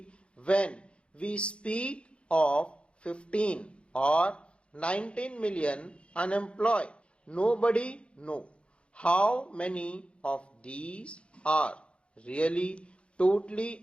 when we speak of 15 or 19 million unemployed, nobody knows how many of these are really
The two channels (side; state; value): right; late; 0.058 ms